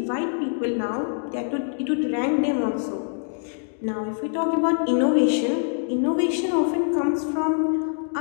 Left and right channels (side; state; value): right; silent; digital silence